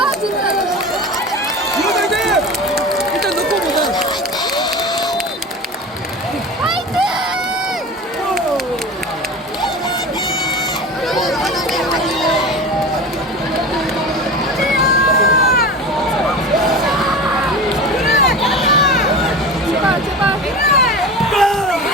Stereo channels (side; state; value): both; normal; correlation 0.31